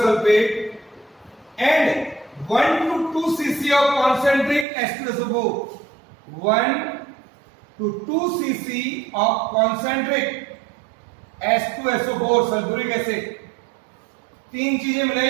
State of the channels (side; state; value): left; drops out; at 4.7 s